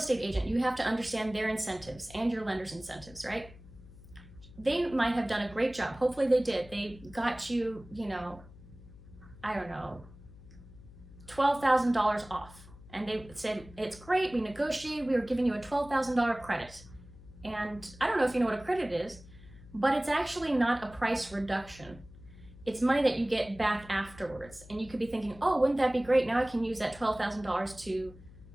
agent, you have to understand their incentives and your lender's incentives, right? They might have done a great job. Hopefully they did. They got you, $12,000 off. And they said, it's great, we negotiated, we were giving you a $12,000 credit. And I don't know if you know what a credit is, but it's actually not a price reduction. It's money that you get back afterwards. And you could be thinking, oh, wouldn't that be great? Now I can use that $12,000 to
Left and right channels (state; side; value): noise; left; hum, 20 dB below the sound